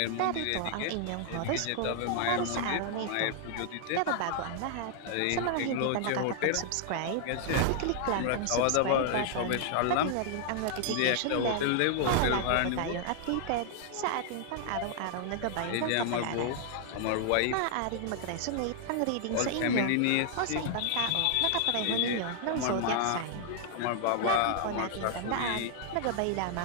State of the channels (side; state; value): both; different; correlation 0.00